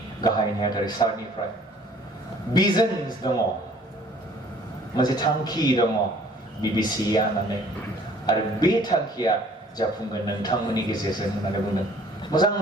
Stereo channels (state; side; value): normal; both; correlation 0.56